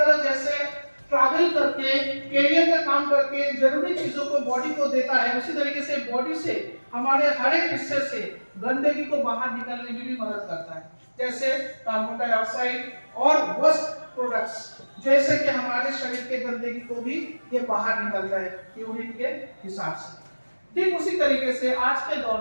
जैसे ट्रैवल करके कैरियर का काम करके जरूरी चीजों को बॉडी को देता है, उसी तरीके से बॉडी से हमारे हर एक हिस्से से गंदगी को बाहर निकलने में भी मदद करता है। जैसे कार्बन डाइऑक्साइड और वेस्ट प्रोडक्ट्स, जैसे कि हमारे शरीर के गंदगी को भी ये बाहर निकलता है यूरिन के हिसाब से। ठीक उसी तरीके से आज के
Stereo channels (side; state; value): both; inverted; correlation -1.00